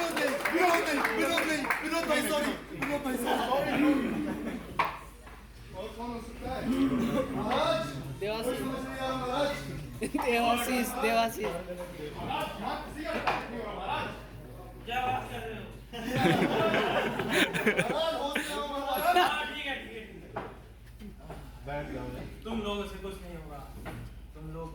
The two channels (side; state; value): both; identical; correlation 1.00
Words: विनोद भाई सॉरी। विनोद भाई सॉरी। और कौन हो सकता है? महाराज देवाशीष। कोई समझ नहीं आ रहा महाराज। देवाशीष देवाशीष महाराज यहाँ किसी का साथ नहीं होगा महाराज। क्या बात कर रहे हो? महाराज होश में आओ महाराज। हाँ ठीक है। बैठ जाओ। तुम लोगों से कुछ नहीं होगा, तुम लोग